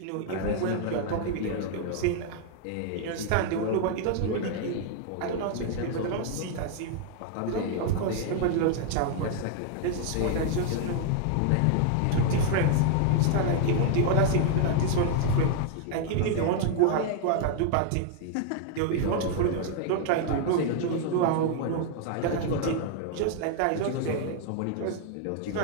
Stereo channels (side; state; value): both; different; correlation 0.00